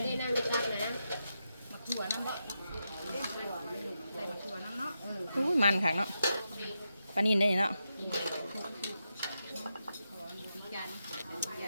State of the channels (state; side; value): inverted; both; correlation -0.86